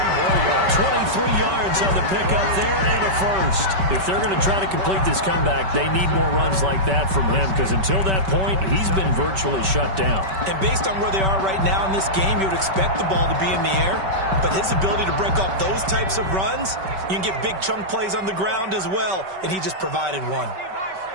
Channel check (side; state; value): left; late; 5.2 ms